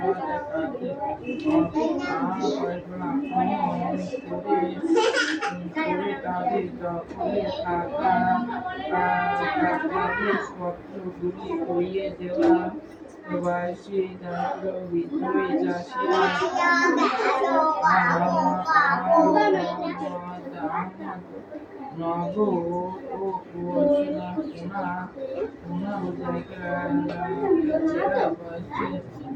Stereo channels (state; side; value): identical; both; correlation 1.00